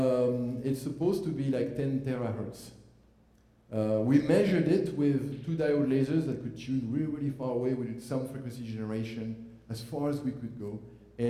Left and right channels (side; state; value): both; identical; correlation 1.00